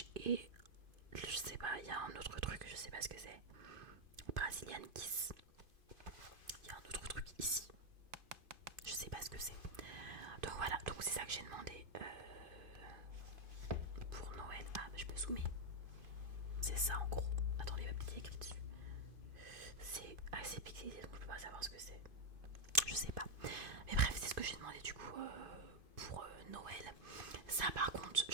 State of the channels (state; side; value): late; left; 2.6 ms